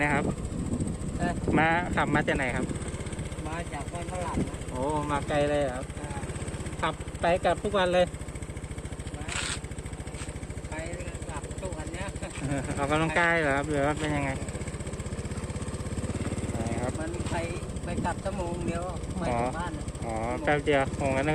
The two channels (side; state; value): both; identical; correlation 1.00